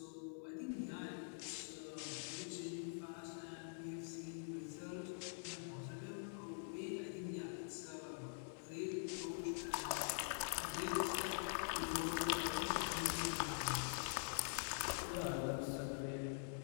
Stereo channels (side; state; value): right; silent; digital silence